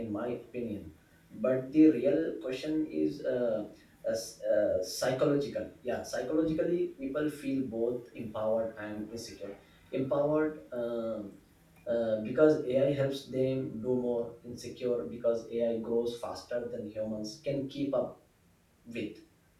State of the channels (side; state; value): both; identical; correlation 1.00